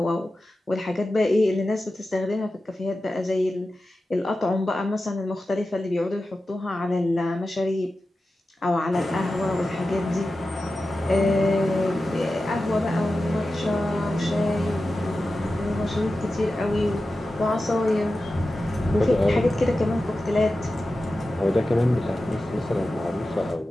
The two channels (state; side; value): normal; both; correlation 0.93